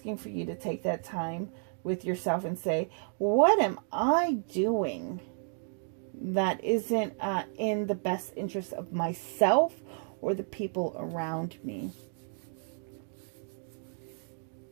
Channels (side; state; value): left; silent; 57 dB below the other